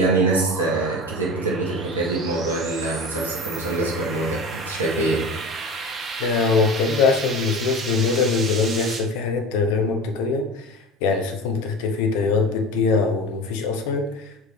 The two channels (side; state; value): both; normal; correlation 0.32